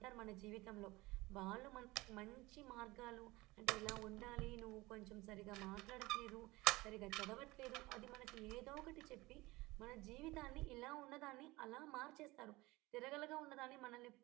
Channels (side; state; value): left; quieter; 21.0 dB